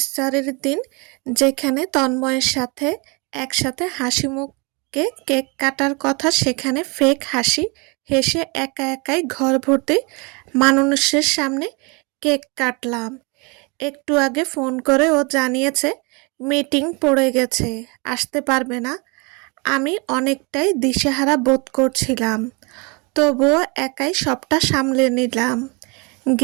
দিন যেখানে তন্ময়ের সাথে একসাথে হাসিমুখে কেক কাটার কথা, সেখানে ফেক হাসি হেসে একা একাই ঘর ভর্তি মানুষের সামনে কেক কাটলাম। একটু আগে ফোন করে ও জানিয়েছে মিটিং পড়ে গেছে, আসতে পারবে না। আমি অনেকটাই দিশেহারা বোধ করছিলাম, তবুও একাই সবটা সামলে নিলাম।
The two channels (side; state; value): left; quieter; 29.9 dB